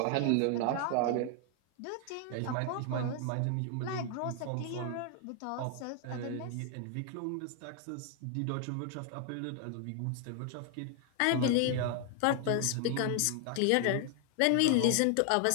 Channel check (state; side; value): different; both; correlation 0.00